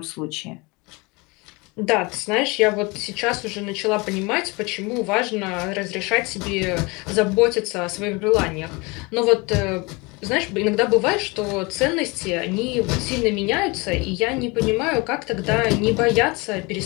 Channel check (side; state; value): right; quieter; 26.4 dB